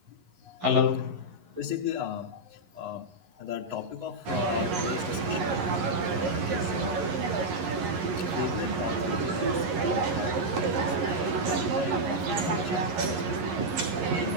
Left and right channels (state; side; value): late; left; 11 ms